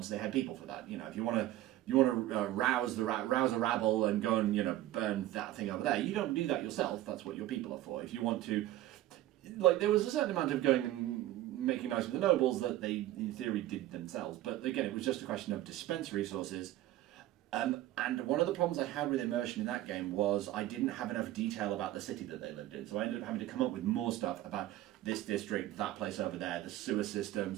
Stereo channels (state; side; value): quieter; left; 14.8 dB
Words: They had people for that. You know, if you want to rouse a rabble and go and burn that thing over there. You don't do that yourself. That's what your people are for. If you want to, like, there was a certain amount of going and making nice with the nobles that they, in theory, did themselves. But again, it was just a question of dispense resources. And one of the problems I had with immersion in that game was I didn't have enough detail about the city that they lived in. So I ended up having to come up with more stuff about this district, that place over there, the sewer